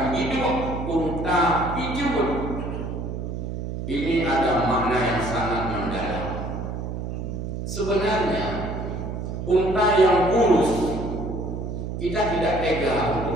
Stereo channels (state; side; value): noise; right; hum, 5 dB below the sound